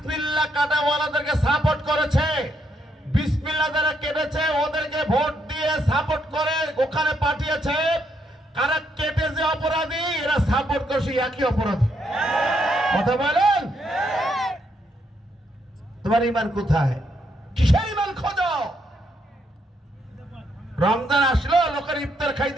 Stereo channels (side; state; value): both; normal; correlation 0.76